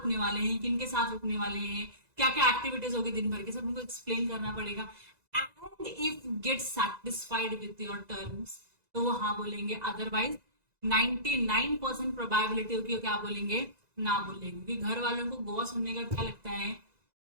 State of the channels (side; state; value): left; late; 2.0 ms